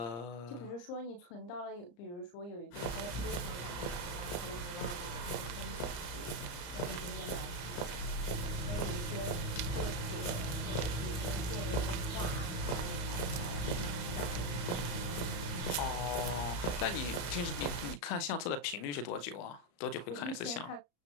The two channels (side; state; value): right; late; 34 ms